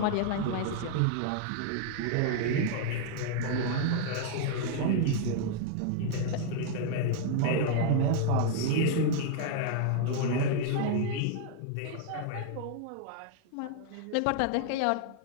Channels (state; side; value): different; both; correlation 0.00